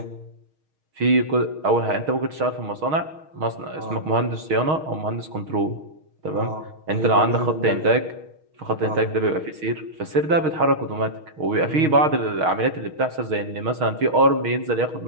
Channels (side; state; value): left; late; 6.4 ms